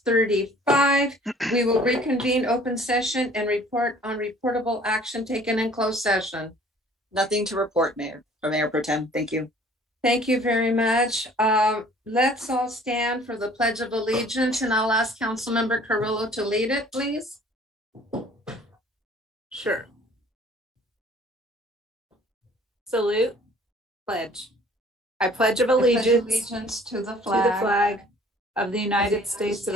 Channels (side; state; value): both; normal; correlation 0.53